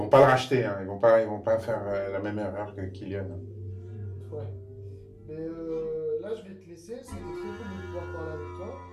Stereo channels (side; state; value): both; identical; correlation 1.00